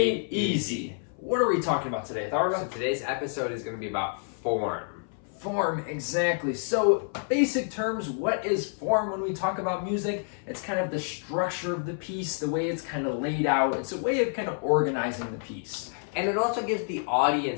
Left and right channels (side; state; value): right; silent; 57 dB below the other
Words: Easy. What are we talking about today, Atharva? So today's episode is going to be about form. Form, exactly. So, basic terms, what is form when we talk about music? It's kind of the structure of the piece, the way it's kind of laid out. It's a way of kind of organizing the piece. And it also gives the